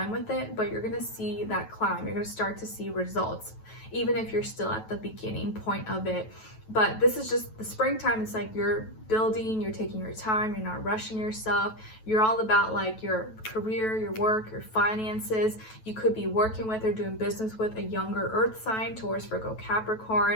with it, but you're gonna see that climb. You're gonna start to see results, even if you're still at the beginning point of it. But this is just the springtime. It's like you're building, you're taking your time, you're not rushing yourself. You're all about like your career, your work, your finances. You could be working with or doing business with a younger earth sign, Taurus, Virgo,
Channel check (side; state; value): right; late; 9.2 ms